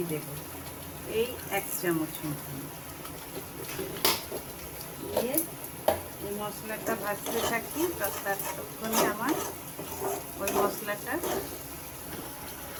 দেব, এই 1 চামচ মতন দিয়ে এই মশলাটা ভাজতে থাকি। ততক্ষণে আমার ওই মশলাটা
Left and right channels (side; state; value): both; identical; correlation 1.00